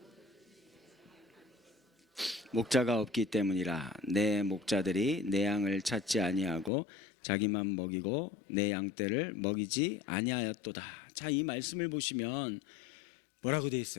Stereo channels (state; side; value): drops out; right; at 6.7 s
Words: 목자가 없기 때문이라. 내 목자들이 내 양을 찾지 아니하고 자기만 먹이고 내 양떼를 먹이지 아니하였도다. 자, 이 말씀을 보시면 뭐라고 되어